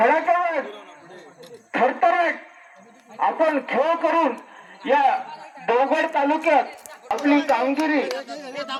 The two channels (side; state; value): both; identical; correlation 1.00